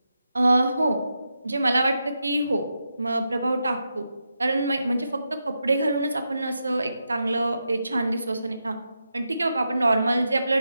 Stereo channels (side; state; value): both; inverted; correlation -0.87